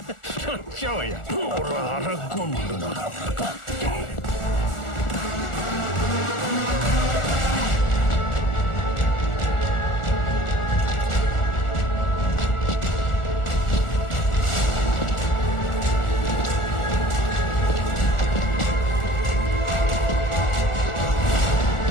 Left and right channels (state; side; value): late; right; 1.4 ms